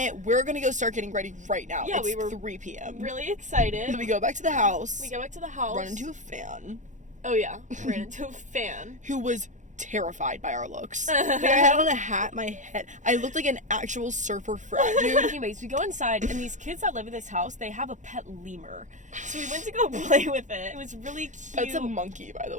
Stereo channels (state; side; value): late; left; 0.36 ms